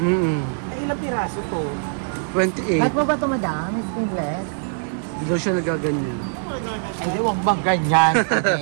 ilang piraso to? 28. At mo ba ito madami? Skinless? Hindi daw siya nagaganyan. Hindi, huwag bang ganyan,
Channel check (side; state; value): left; silent; digital silence